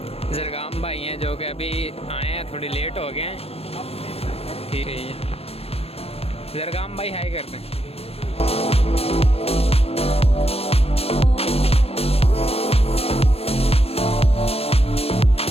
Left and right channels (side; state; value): right; late; 0.29 ms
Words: जरगाम भाई हैं जो कि अभी आए हैं, थोड़ी लेट हो गए हैं। ठीक है, जरगाम भाई हाय करते हैं।